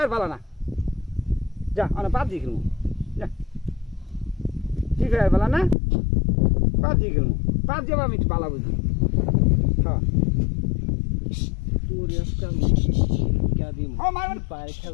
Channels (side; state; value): right; drops out; at 5.8 s